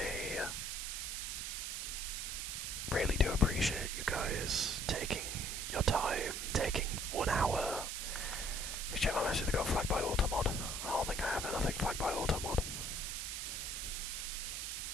really do appreciate you guys taking your time, taking 1 hour. Check my message to go flagged by Automod. I don't think I have anything flagged by Automod.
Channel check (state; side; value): noise; right; hiss, 3 dB below the sound